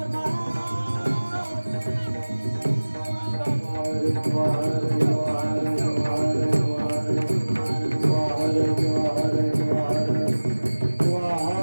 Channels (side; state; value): both; inverted; correlation -1.00